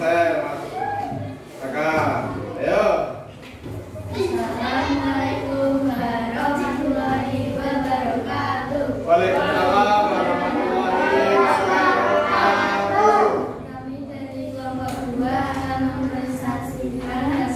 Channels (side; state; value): both; identical; correlation 1.00